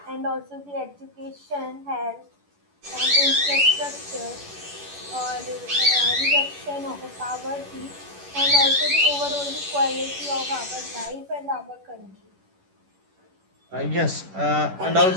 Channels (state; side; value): late; left; 11 ms